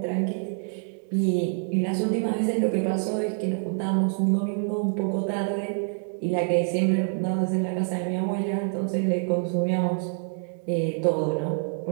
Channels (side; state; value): left; silent; 61 dB below the other